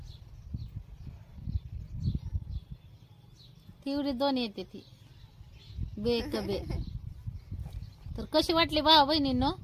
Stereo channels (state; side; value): identical; both; correlation 1.00